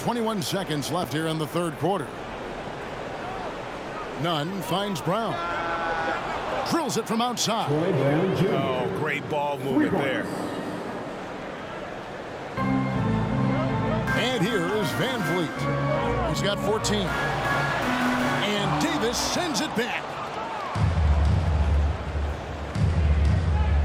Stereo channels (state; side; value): identical; both; correlation 1.00